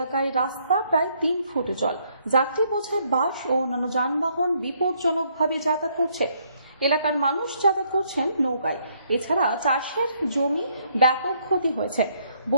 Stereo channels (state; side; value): inverted; both; correlation -0.69